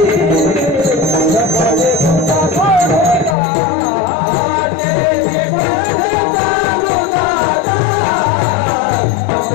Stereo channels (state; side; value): drops out; right; at 3.4 s